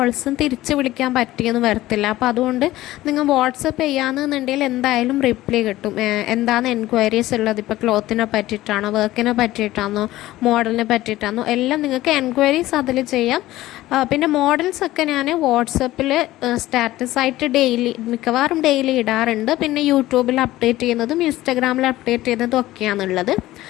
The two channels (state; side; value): quieter; right; 16.3 dB